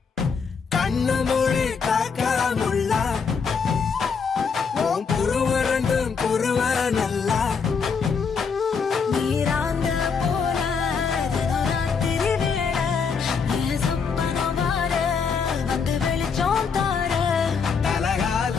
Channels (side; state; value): right; quieter; 5.7 dB